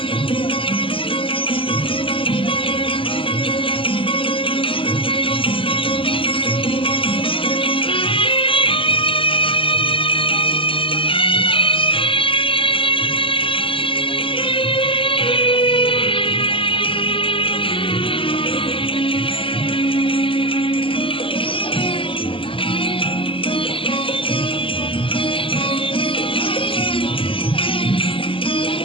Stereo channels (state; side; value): late; right; 0.25 ms